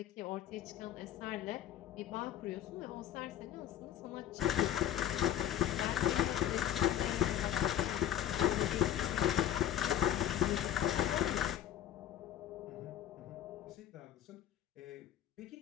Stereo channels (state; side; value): quieter; right; 11.3 dB